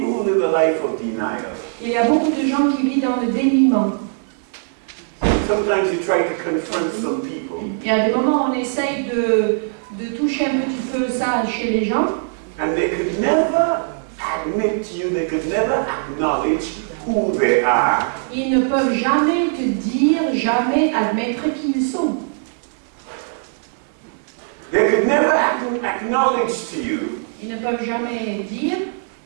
who live a life of denial. Il y a beaucoup de gens qui vivent dans le déniement. Sometimes you try to confront some people. Il y a des moments où on essaye de toucher un petit peu ça chez les gens. And they could never admit to you, they could never acknowledge who they are. Ils ne peuvent jamais te dire, jamais admettre qui ils sont. They could never acknowledge to you Ils ne peuvent jamais dire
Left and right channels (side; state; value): left; silent; 66 dB below the other